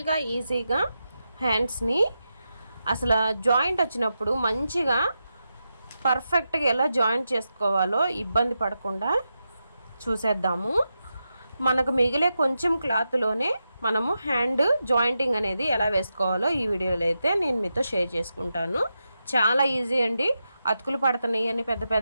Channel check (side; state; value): both; inverted; correlation -0.88